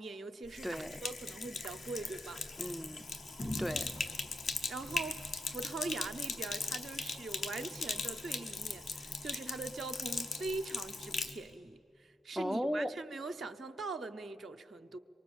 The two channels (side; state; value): both; normal; correlation 0.82